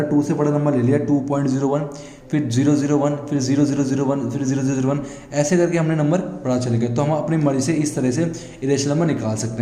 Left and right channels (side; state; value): both; identical; correlation 1.00